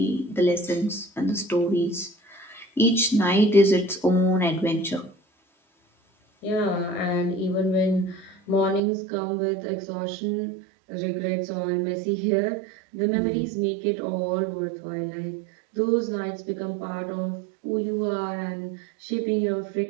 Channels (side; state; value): left; drops out; at 8.8 s